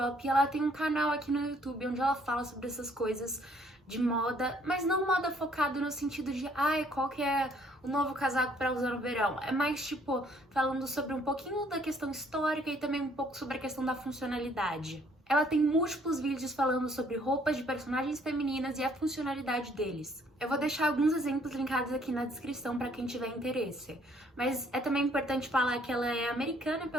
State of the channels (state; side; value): normal; both; correlation 0.63